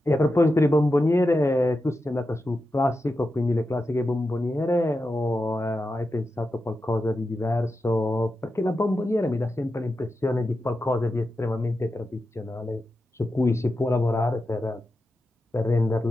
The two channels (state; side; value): normal; both; correlation 0.90